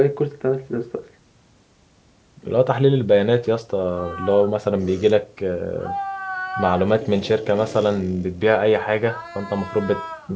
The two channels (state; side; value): identical; both; correlation 1.00